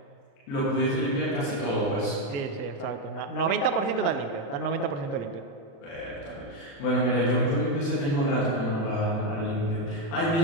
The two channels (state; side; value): late; right; 36 ms